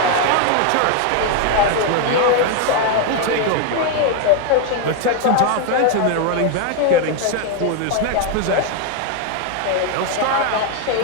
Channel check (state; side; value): different; both; correlation 0.00